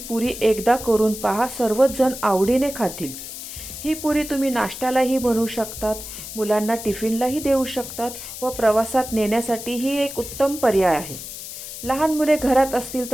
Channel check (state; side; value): noise; left; hiss, 10 dB below the sound